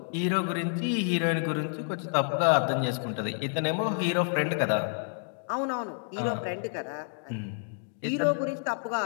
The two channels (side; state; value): right; silent; digital silence